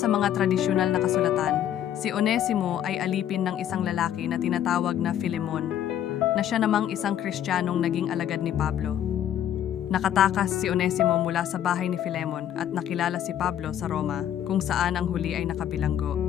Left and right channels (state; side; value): quieter; right; 10.6 dB